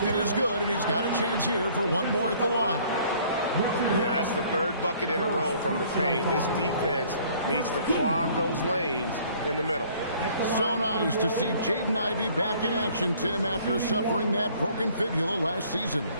is good, and he's got a chance here for 1 more at the line. Yeah, that's the 3rd bucket in a row from the paint. This defense needs to clog those lanes in the middle. So nice to see Jaden Ivey back in action, Tim, after suffering that broken fibula last season.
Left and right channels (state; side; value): inverted; both; correlation -0.57